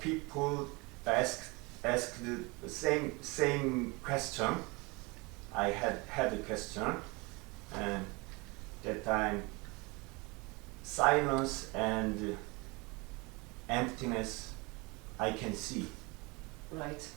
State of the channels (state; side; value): quieter; left; 26.7 dB